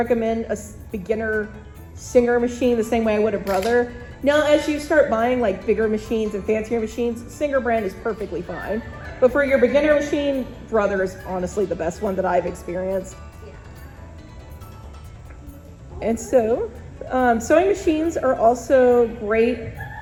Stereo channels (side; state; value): both; identical; correlation 1.00